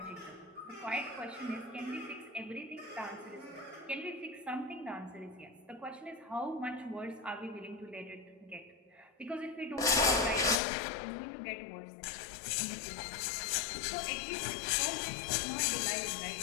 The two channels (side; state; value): right; drops out; at 10.6 s